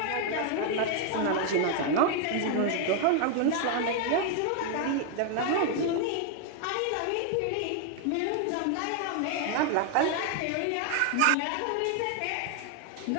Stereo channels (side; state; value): both; different; correlation 0.00